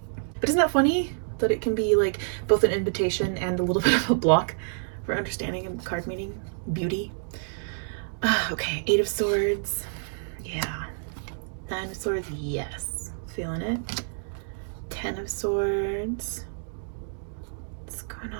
But isn't that funny that it can be like both an invitation and a little bit of a block for understanding a card meaning? Beauty. Okay, 8 of Swords. Yeah. 9 of Swords. Yes. Feeling it. 10 of Swords. What's going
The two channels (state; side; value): silent; left; digital silence